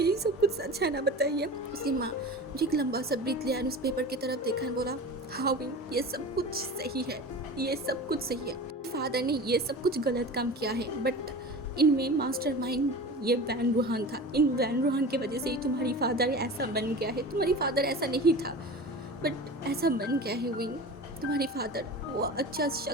सब कुछ सच है ना, बताइए। उसकी माँ जो एक लंबा सा ब्रीथ लिया उस पेपर की तरफ देखा बोला, हाँ विंग ये सब कुछ सही है, ये सब कुछ सही है। फादर ने ये सब कुछ गलत काम किया है, बट इनमें मास्टरमाइंड ये वैन रूहान था। इन वैन रूहान की वजह से ही तुम्हारी फादर ऐसा बन गया है। तुम्हारी फादर ऐसा नहीं था बट ऐसा बन गया है विंग। तुम्हारी फादर वो अच्छा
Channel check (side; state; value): both; normal; correlation 0.34